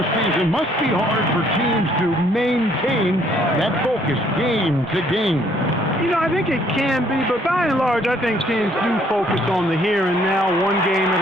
season. Must be hard for teams to maintain that focus game to game. You know, I think it can be, but by and large, I think teams do focus on the here and now, one game at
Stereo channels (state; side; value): normal; both; correlation 0.64